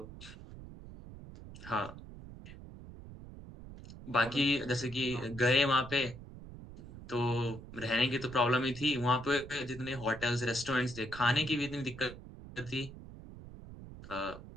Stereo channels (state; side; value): noise; right; rumble, 14 dB below the sound